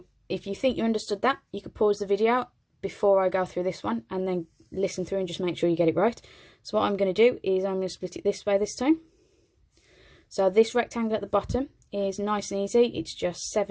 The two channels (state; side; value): identical; both; correlation 1.00